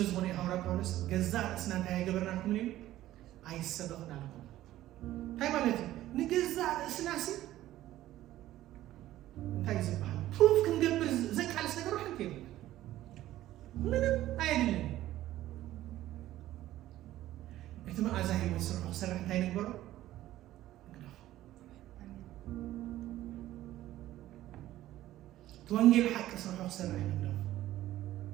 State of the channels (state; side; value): quieter; left; 14.4 dB